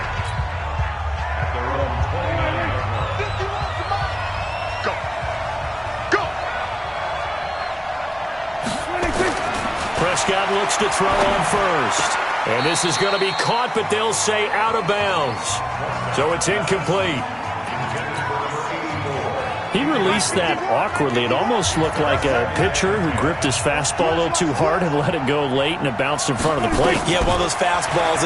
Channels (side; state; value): both; identical; correlation 1.00